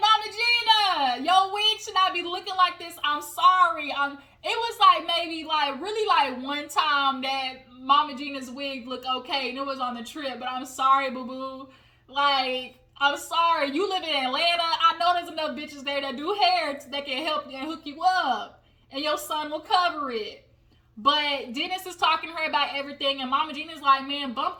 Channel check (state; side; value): identical; both; correlation 1.00